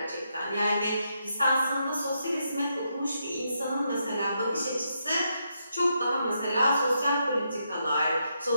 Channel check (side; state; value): both; inverted; correlation -0.81